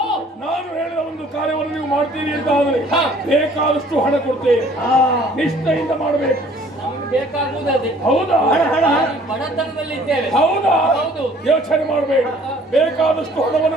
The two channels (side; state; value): both; normal; correlation 0.55